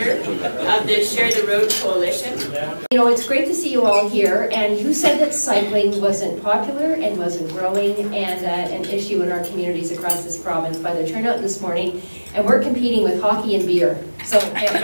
of the Share the Road Coalition. You know, it's great to see you all here, and you said that cycling wasn't popular and wasn't growing and an issue in our communities across this province by the turnout this morning, and we're competing with hockey and beer. So to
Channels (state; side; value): inverted; both; correlation -1.00